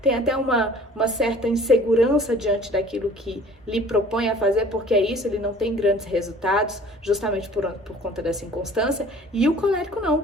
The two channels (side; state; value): both; normal; correlation 0.49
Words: tem até uma certa insegurança diante daquilo que lhe propõe a fazer, porque é isso, ele não tem grandes resultados, justamente por conta dessa inconstância. E o colérico não, o